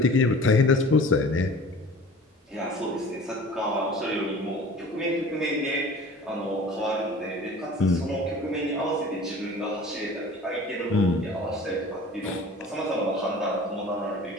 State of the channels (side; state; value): both; normal; correlation 0.43